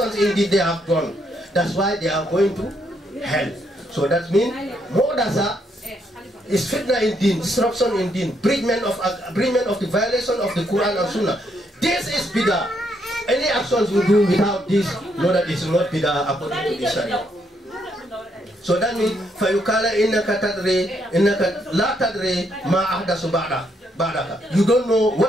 in deen they have done. That's why they are going to hell. So that means muhdasa is fitna in deen, disruption in deen, breachment of the violation of the Quran and Sunnah. This is bidah. Any actions we do without this, know that it's not bidah according to the Sharia. So that means, فَيُقَالَ إِنَّكَ لَا تَدْرِي مَا أَحْدَثُ بَعْدَكَ. You don't know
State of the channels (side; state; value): both; normal; correlation 0.75